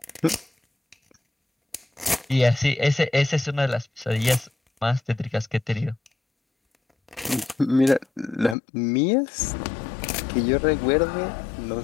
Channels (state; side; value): drops out; right; at 8.6 s